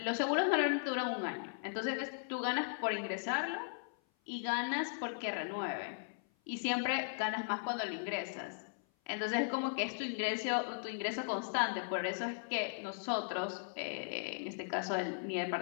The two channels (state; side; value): silent; right; 53 dB below the other